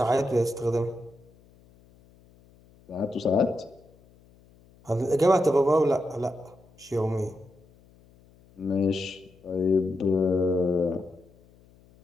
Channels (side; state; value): left; noise; hum, 28 dB below the sound